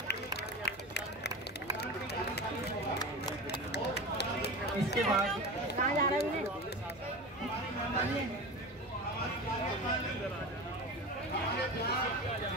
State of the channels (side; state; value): both; normal; correlation 0.28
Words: इसके बाद कहाँ जा रहा है?